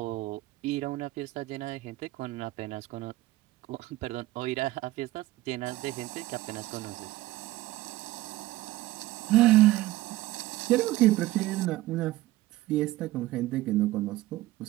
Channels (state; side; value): quieter; left; 17.2 dB